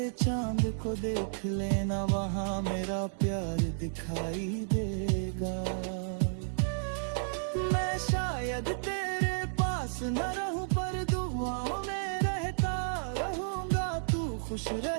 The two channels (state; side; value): silent; left; digital silence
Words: चांद को देख लेना, वहाँ मेरा प्यार दिखाई देगा। मैं शायद तेरे पास न रहूं, पर दुआओं में रहता रहूंगा। तू खुश